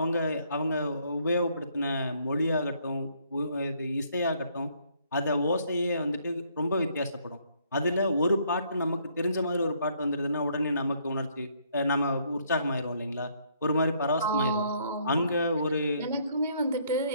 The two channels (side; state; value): both; inverted; correlation -0.67